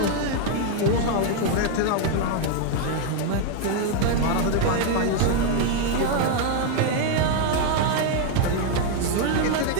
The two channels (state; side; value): different; both; correlation 0.01